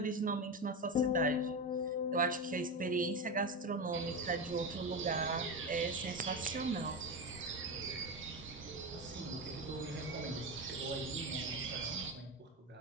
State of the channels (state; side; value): normal; both; correlation 0.18